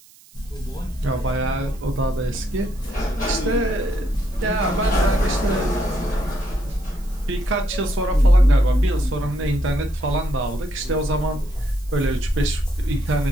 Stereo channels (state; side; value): noise; right; hiss, 25 dB below the sound